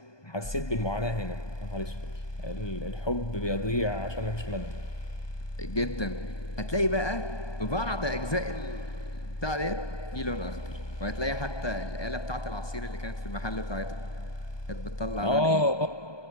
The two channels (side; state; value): right; late; 1.2 ms